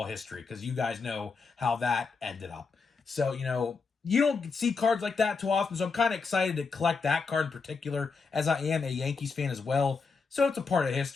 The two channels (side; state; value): right; quieter; 4.8 dB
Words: history, because you guys know how that ended up. So, you don't see cards like that too often, so I'm kind of excited to collect that card in particular, as I am a Yankees fan as well. So it's a part of